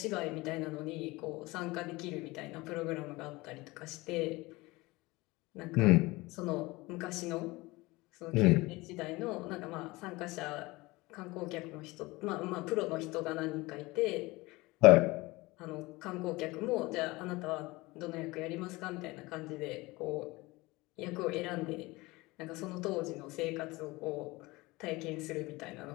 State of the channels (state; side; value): quieter; right; 21.8 dB